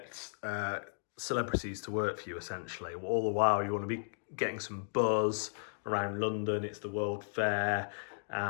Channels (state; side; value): silent; right; digital silence